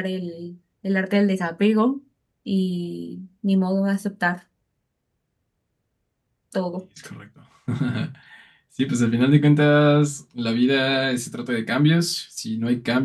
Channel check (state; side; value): identical; both; correlation 1.00